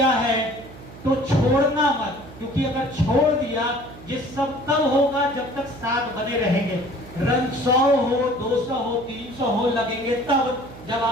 है तो छोड़ना मत, क्योंकि अगर छोड़ दिया ये सब तब होगा जब तक साथ बने रहेंगे। रन 100 हो, 200 हो, 300 हो लगेंगे तब जब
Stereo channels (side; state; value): right; noise; hum, 17 dB below the sound